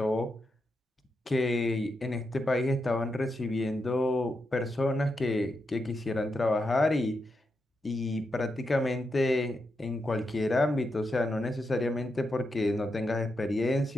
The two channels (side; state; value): both; normal; correlation 0.85